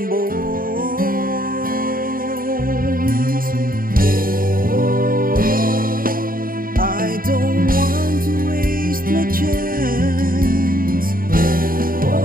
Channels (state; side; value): late; left; 0.41 ms